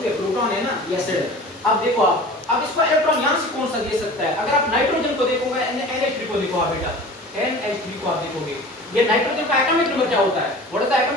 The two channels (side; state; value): both; normal; correlation 0.40